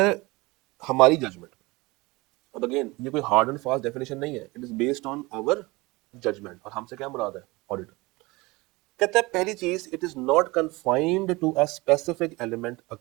हमारी जजमेंट। अब अगेन ये कोई हार्ड एंड फास्ट डेफिनेशन नहीं है, it is based on our judgment. और हमसे क्या मुराद है? ऑडिटर। कहता है पहली चीज, it is not confined to a specific element,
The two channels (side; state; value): left; quieter; 23.0 dB